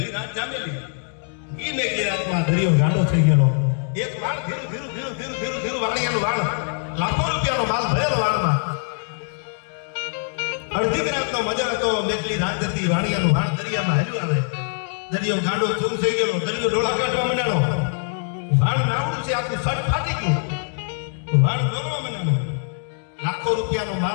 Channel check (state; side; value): silent; right; 58 dB below the other